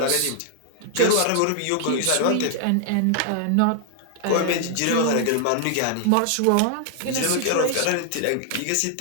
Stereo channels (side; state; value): both; different; correlation 0.00